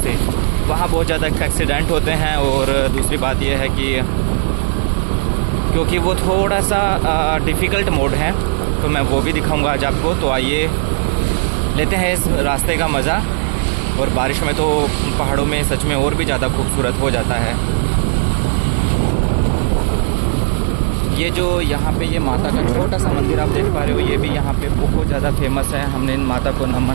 वहाँ बहुत ज़्यादा एक्सीडेंट होते हैं और दूसरी बात यह है कि क्योंकि वो थोड़ा सा डिफ़िकल्ट मोड है, तो मैं वो भी दिखाऊंगा आज आपको। तो आइए लेते हैं इस रास्ते का मज़ा। और बारिश में तो पहाड़ों में सच में और भी ज़्यादा खूबसूरत हो जाता है। ये जो यहाँ पे ये माता का छोटा सा मंदिर आप देख पा रहे हो, ये भी यहाँ पे बहुत ज़्यादा फेमस है। हमने इन माता को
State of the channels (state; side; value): silent; left; digital silence